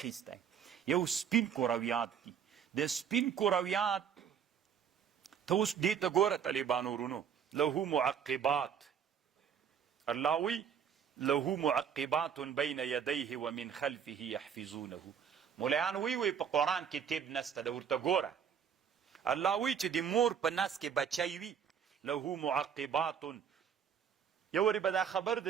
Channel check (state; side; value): quieter; left; 7.8 dB